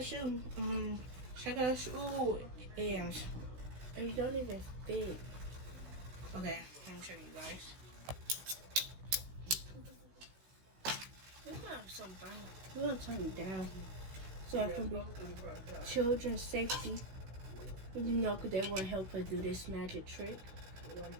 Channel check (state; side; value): late; left; 16 ms